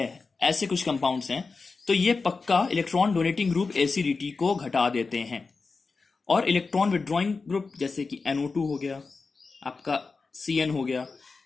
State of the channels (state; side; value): quieter; right; 4.3 dB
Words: ऐसे कुछ कंपाउंड्स हैं तो ये पक्का इलेक्ट्रॉन डोनेटिंग ग्रुप एसिडिटी को घटा देते हैं, और इलेक्ट्रॉन विड्रॉइंग ग्रुप जैसे कि NO2 हो गया, आपका CN हो गया,